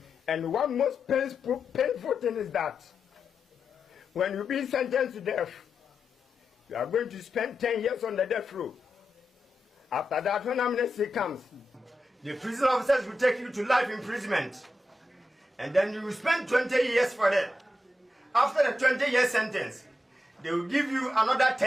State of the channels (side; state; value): both; normal; correlation 0.88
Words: And one most painful thing is that when you've been sentenced to death, you are going to spend 10 years on the death row. After that, when amnesty comes, the prison officers will take you to life imprisonment. And then you will spend 20 years for that. After the 20-year sentence, they will give you another